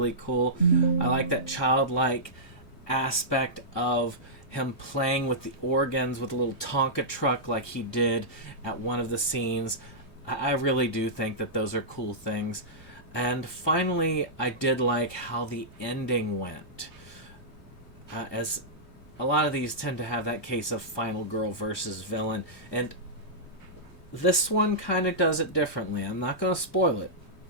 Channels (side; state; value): right; late; 3.2 ms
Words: cool. I like that childlike aspect of him playing with the organs with a little Tonka truck like he did at one of the scenes. I really do think that those are cool things. And finally, I did like how the ending went. As a lot of these tend to have that case of final girl versus villain. And this one kind of does it differently. I'm not going to spoil it,